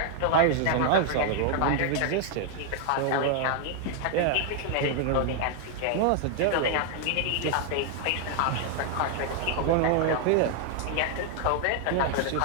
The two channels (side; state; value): both; different; correlation 0.00